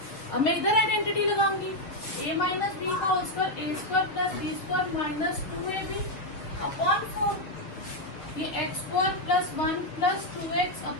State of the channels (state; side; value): late; right; 6.8 ms